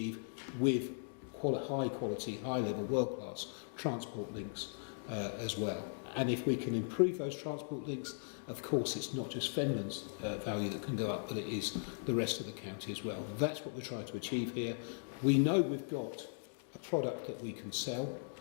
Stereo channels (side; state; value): right; silent; digital silence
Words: with high quality, high level, world class transport links as well? And if we can improve those transport links, of course it's not just Finland's value that can go up, but it is the rest of the county as well. That's what we're trying to achieve here. We know we've got a product that we can sell.